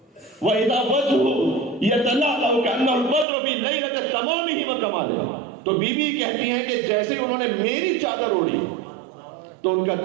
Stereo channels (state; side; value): drops out; left; at 3.2 s